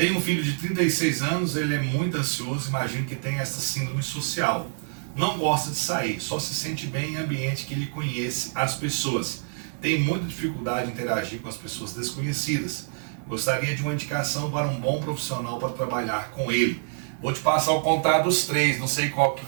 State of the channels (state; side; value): silent; left; digital silence